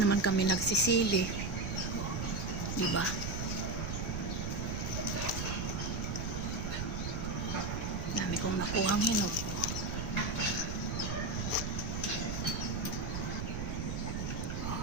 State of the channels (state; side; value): noise; right; rumble, 3 dB below the sound